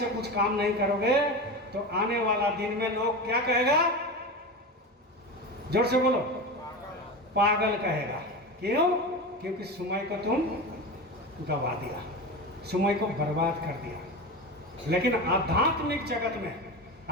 कुछ काम नहीं करोगे तो आने वाला दिन में लोग क्या कहेगा? जोर से बोलो, पागल कहेगा। क्यों? क्योंकि सुमई को तुम गवा दिया, सुमई को बर्बाद कर दिया। लेकिन आध्यात्मिक जगत में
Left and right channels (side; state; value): both; normal; correlation 0.24